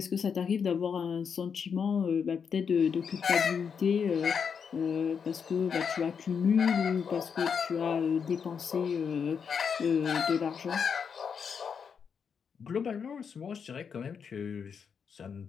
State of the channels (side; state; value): right; quieter; 6.6 dB